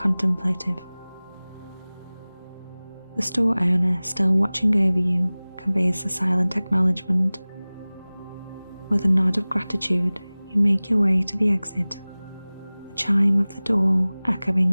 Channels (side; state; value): both; inverted; correlation -0.99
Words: The store owner, still watching over you, conveys a silent acknowledgement. With a nod of gratitude, you make your way to the exit, the chime of the door